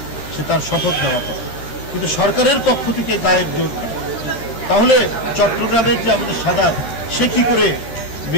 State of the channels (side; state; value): right; late; 13 ms